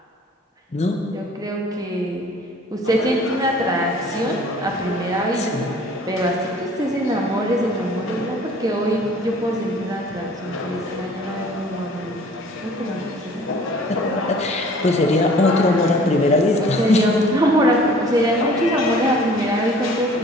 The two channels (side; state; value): both; normal; correlation 0.51